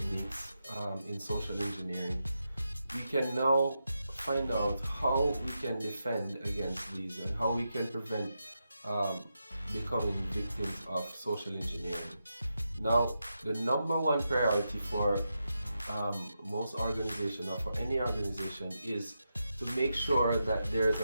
in social engineering, we can now find out how we can defend against these and how we can prevent becoming victims of social engineering. Now, the number one priority for most organizations, or for any organization, is to make sure that there is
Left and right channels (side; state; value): both; inverted; correlation -0.87